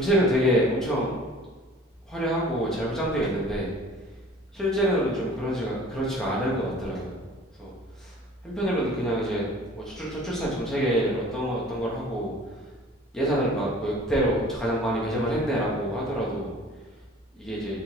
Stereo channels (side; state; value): both; normal; correlation 0.47